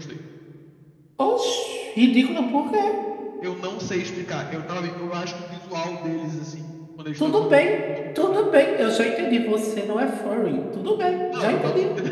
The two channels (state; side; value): identical; both; correlation 1.00